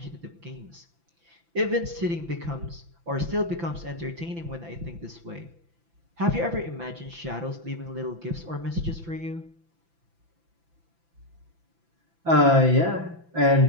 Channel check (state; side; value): late; left; 5.9 ms